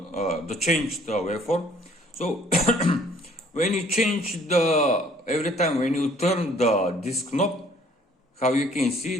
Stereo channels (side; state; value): both; normal; correlation 0.58